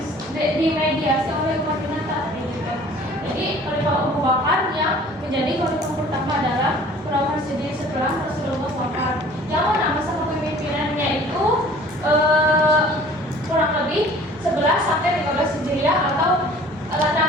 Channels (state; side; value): normal; both; correlation 0.49